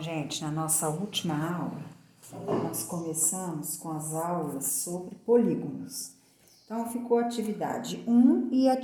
na nossa última aula, nós começamos com as aulas sobre polígonos. Então, ficou atividade 1 e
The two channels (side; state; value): both; identical; correlation 1.00